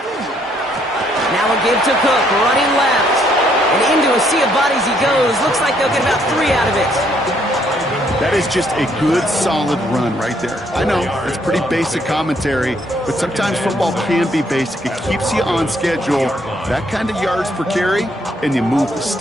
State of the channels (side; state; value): both; normal; correlation 0.69